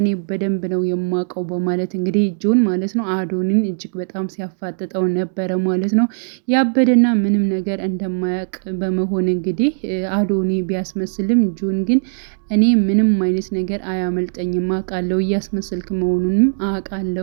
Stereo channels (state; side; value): silent; left; 67 dB below the other